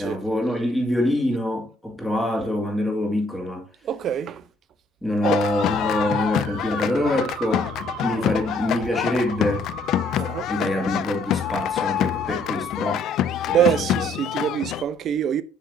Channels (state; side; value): normal; both; correlation 0.65